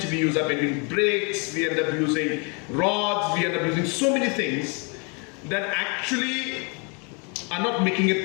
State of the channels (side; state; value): right; quieter; 34.1 dB